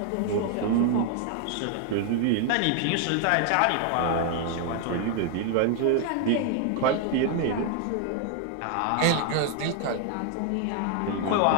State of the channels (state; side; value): different; both; correlation 0.00